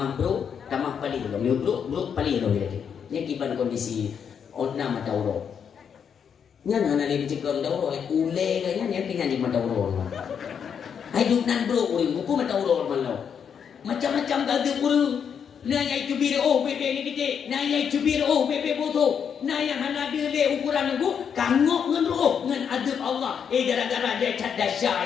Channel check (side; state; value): right; quieter; 7.4 dB